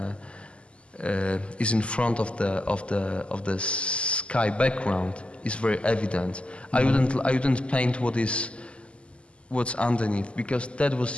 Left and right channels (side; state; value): right; late; 0.055 ms